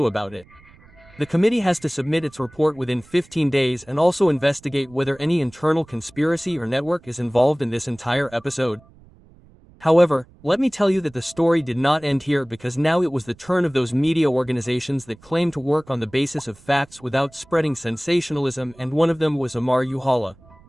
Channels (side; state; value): right; noise; rumble, 26 dB below the sound